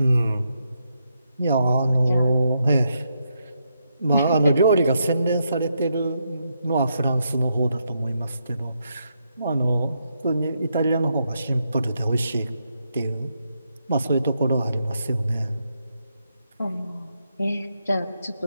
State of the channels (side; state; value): both; inverted; correlation -0.80